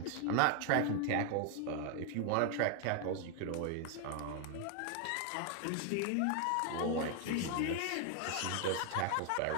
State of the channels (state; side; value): different; both; correlation 0.00